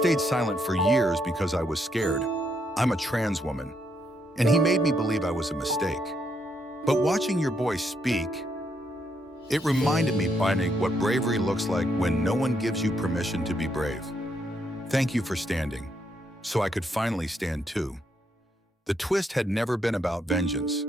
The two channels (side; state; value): both; normal; correlation 0.76